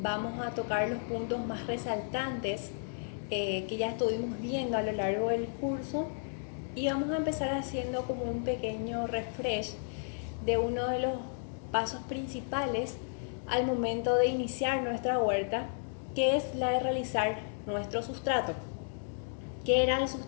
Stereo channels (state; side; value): silent; right; digital silence